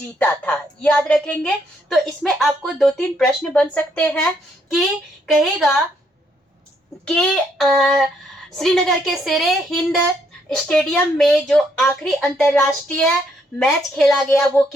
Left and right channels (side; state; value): both; normal; correlation 0.72